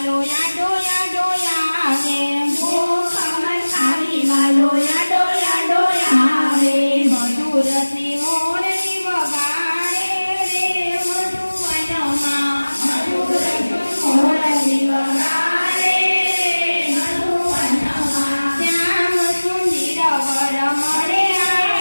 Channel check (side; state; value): both; inverted; correlation -1.00